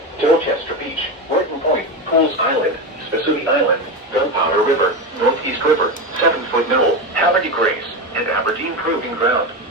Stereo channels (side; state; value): both; normal; correlation 0.18